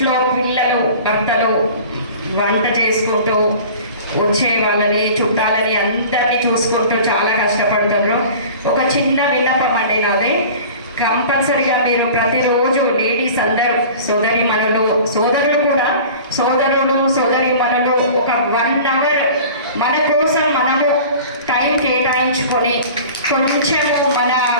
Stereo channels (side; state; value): both; inverted; correlation -0.41